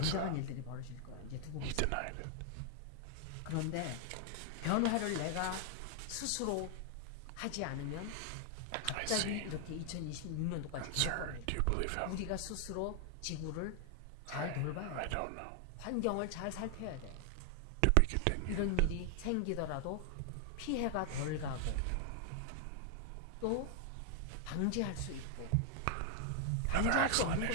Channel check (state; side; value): different; both; correlation 0.00